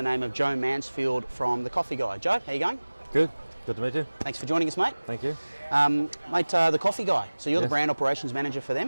name of Joe Mansfield from The Coffee Guy. Joe, how you going? Good to meet you. Thanks for joining us, mate. Thank you. Mate, The Coffee Guy, so you're the Yes. brand operations manager for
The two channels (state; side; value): inverted; both; correlation -1.00